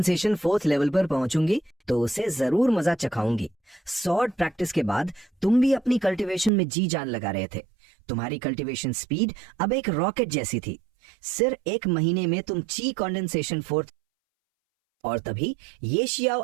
fourth level पर पहुंचूंगी तो उसे जरूर मजा चखाऊंगी। सॉर्ड प्रैक्टिस के बाद तुम भी अपनी कल्टीवेशन में जी जान लगा रहे थे। तुम्हारी कल्टीवेशन स्पीड अब एक रॉकेट जैसी थी। सिर्फ एक महीने में तुम ची कंडेंसेशन फोर्थ। और तभी ये शियाओ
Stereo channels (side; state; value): left; drops out; at 6.5 s